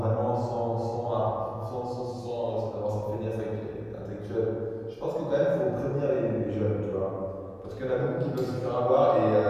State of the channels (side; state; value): both; identical; correlation 1.00